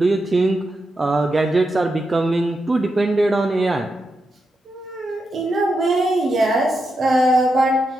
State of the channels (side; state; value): both; normal; correlation 0.86